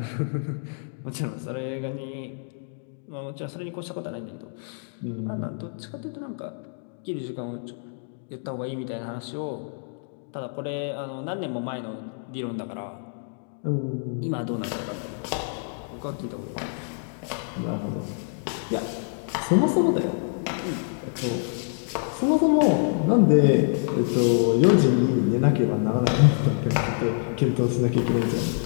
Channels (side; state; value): right; silent; digital silence